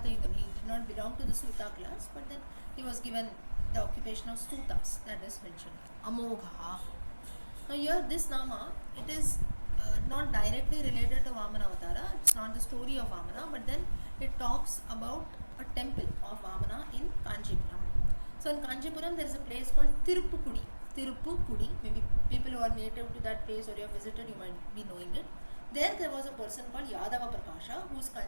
Yuddham, he did not belong to the Suta class, but then he was given the occupation of Sutas, that is mentioned. Amogha. Now here this Nama, it is not directly related to Vamana Avatara, it's not the story of Vamana, but then it talks about a temple of Vamana in Kanchipuram. So in Kanchipuram there is a place called Tirupukudi. Maybe people who are native to that place or you have visited, you might be knowing it. There was a person called Yadava Prakasha who is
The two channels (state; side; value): inverted; both; correlation -1.00